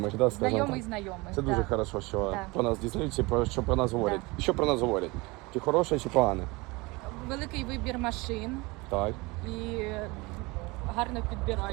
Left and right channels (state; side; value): quieter; left; 24.4 dB